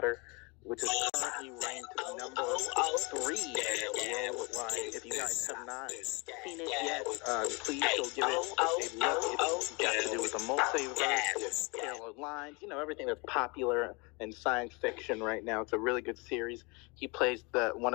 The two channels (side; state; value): right; quieter; 29.2 dB